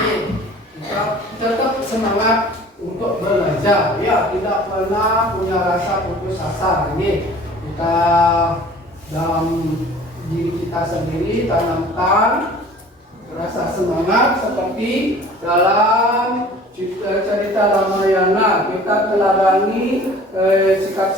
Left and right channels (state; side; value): normal; both; correlation 0.47